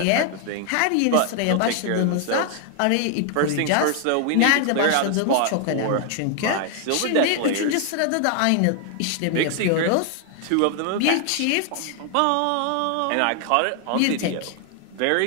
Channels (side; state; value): both; different; correlation 0.00